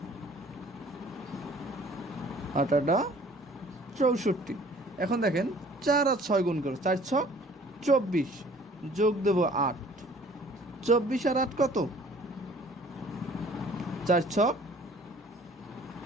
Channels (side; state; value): both; normal; correlation 0.53